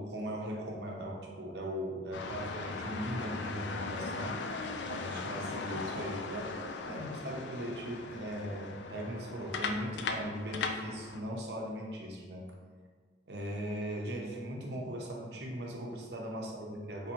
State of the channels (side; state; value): both; normal; correlation 0.36